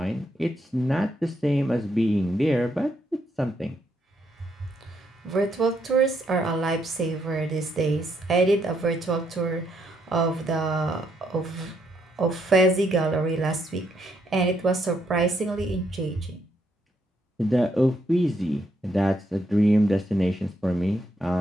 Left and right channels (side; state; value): both; normal; correlation 0.75